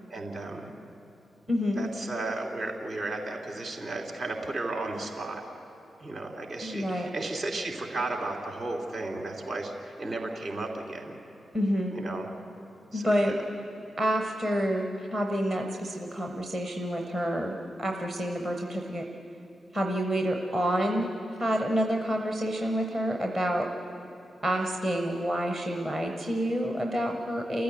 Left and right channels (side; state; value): both; normal; correlation 0.88